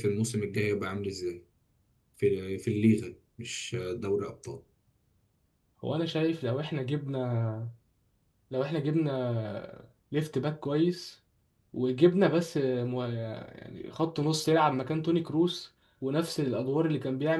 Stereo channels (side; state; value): both; identical; correlation 1.00